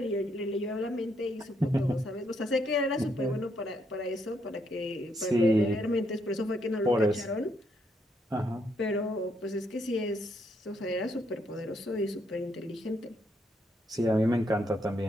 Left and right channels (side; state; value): both; normal; correlation 0.75